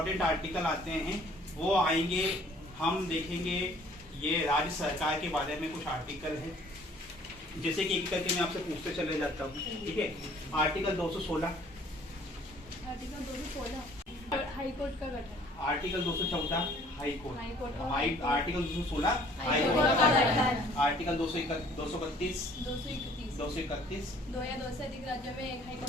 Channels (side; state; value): both; normal; correlation 0.56